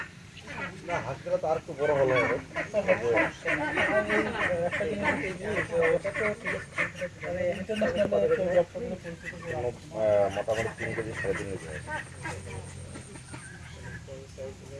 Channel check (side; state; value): both; identical; correlation 1.00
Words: না হাঁসগুলো তো আর একটু বড় হলো মোটামুটি 3 কেজি 3.5 কেজি